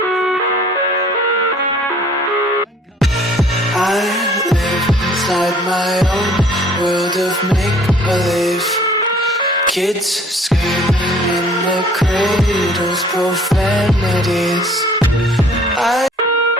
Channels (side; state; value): both; normal; correlation 0.55